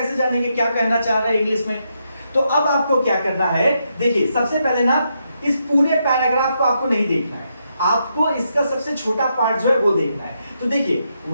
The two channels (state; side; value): inverted; both; correlation -0.81